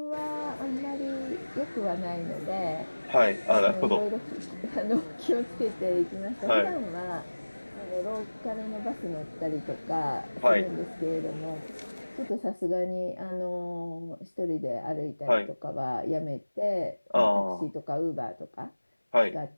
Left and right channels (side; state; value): both; inverted; correlation -1.00